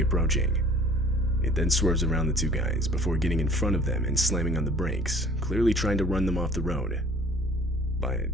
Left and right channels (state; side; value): normal; both; correlation 0.52